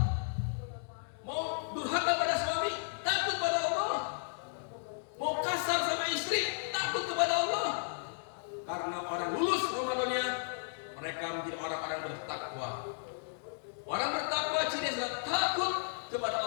Mau durhaka pada suami, takut kepada Allah. Mau kasar sama istri, takut kepada Allah. Karena orang lulus Ramadannya, mereka menjadi orang-orang bertakwa. Orang bertakwa cirinya takut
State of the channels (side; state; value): right; silent; digital silence